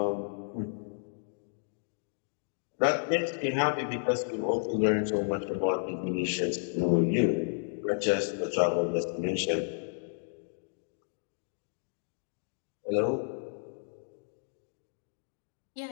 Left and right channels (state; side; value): silent; right; digital silence